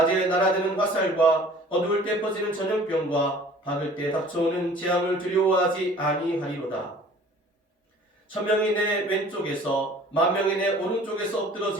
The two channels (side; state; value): both; normal; correlation 0.49